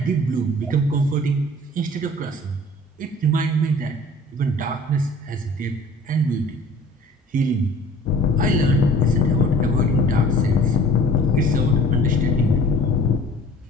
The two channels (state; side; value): normal; both; correlation 0.48